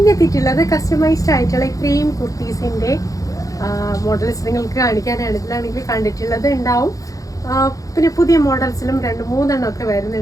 എത്തിയിട്ടുള്ളത് കസ്റ്റമൈസ്ഡ് ആയിട്ടുള്ള ഇത്രയും കുർത്തീസിൻ്റെ മോഡൽസ് നിങ്ങൾക്ക് കാണിക്കാനാണ്. ഇതിലാണെങ്കിൽ കണ്ടിട്ടുള്ളത് ഉണ്ടാവും. പിന്നെ പുതിയ മോഡൽസിലും രണ്ട് മൂന്നെണ്ണം ഒക്കെ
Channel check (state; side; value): late; right; 0.17 ms